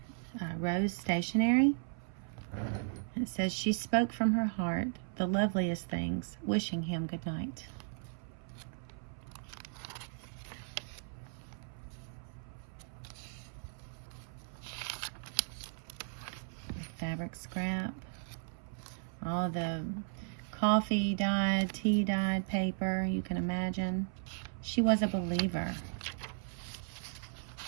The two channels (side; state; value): left; silent; 54 dB below the other